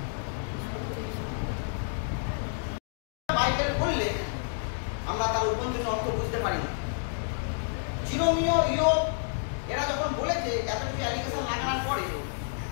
বাইবেল পড়লে আমরা তার উপন্যাসের অর্থ বুঝতে পারি না। জিরোমিও, ইয়োব এরা যখন বলেছে এত কিছু অ্যালিগেশন লাগানোর পরে,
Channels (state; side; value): silent; right; digital silence